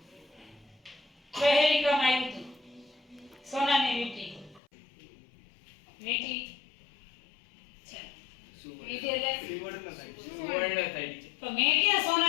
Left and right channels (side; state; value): right; drops out; at 4.6 s